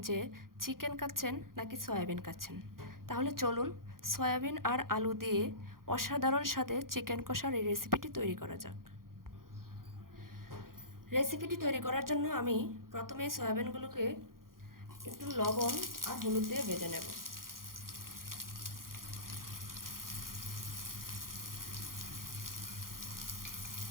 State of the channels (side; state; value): left; late; 0.91 ms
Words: যে চিকেন খাচ্ছেন নাকি সয়াবিন খাচ্ছেন। তাহলে চলুন সয়াবিন আর আলু দিয়ে অসাধারণ স্বাদে চিকেন কষার এই রেসিপিটি তৈরি করা যাক। রেসিপিটি তৈরি করার জন্য আমি প্রথমে সয়াবিনগুলোকে একটু লবণ আর হলুদ দিয়ে ভেজে নেব।